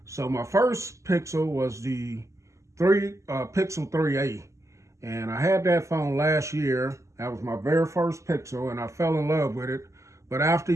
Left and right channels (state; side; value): late; left; 0.15 ms